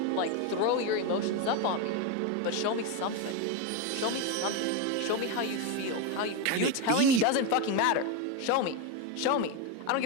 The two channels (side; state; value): both; different; correlation 0.03